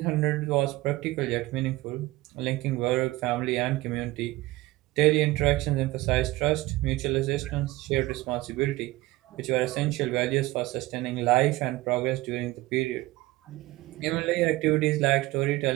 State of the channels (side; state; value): left; quieter; 19.1 dB